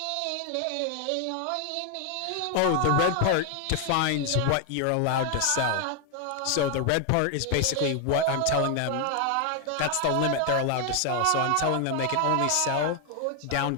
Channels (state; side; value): different; both; correlation 0.01